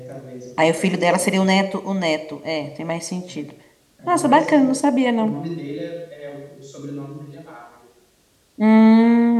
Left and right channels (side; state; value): both; identical; correlation 1.00